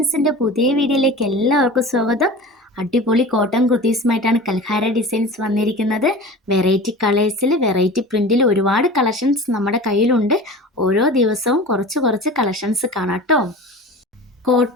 പുതിയ വീഡിയോയിലേക്ക് എല്ലാവർക്കും സ്വാഗതം. അടിപൊളി കോട്ടൺ കുർത്തീസുമായിട്ടാണ് കൽഹാര ഡിസൈൻസ് വന്നിരിക്കുന്നത്. വെറൈറ്റി കളേഴ്സിൽ വെറൈറ്റി പ്രിൻറ്റിൽ ഒരുപാട് കളക്ഷൻസ് നമ്മുടെ കയ്യിലുണ്ട്. ഓരോ ദിവസവും കുറച്ച് കുറച്ച് കളക്ഷൻസ് കാണാം കേട്ടോ.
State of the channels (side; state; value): both; normal; correlation 0.36